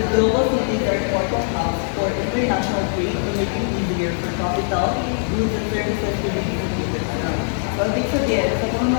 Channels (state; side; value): silent; right; digital silence